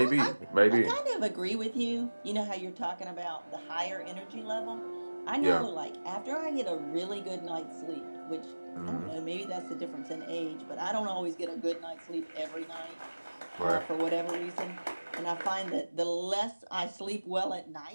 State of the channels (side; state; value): both; inverted; correlation -1.00